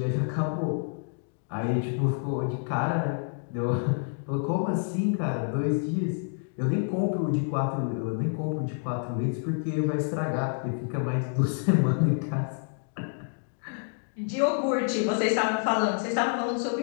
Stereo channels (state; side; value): silent; right; 59 dB below the other